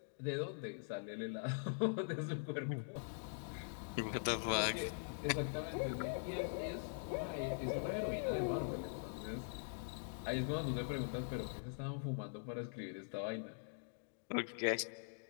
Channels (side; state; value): right; silent; digital silence